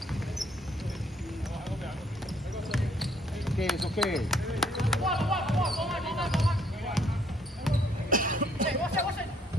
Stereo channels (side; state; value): both; normal; correlation 0.66